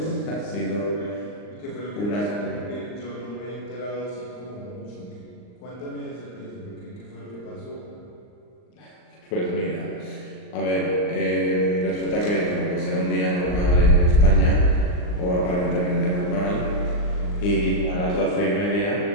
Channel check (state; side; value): late; right; 39 ms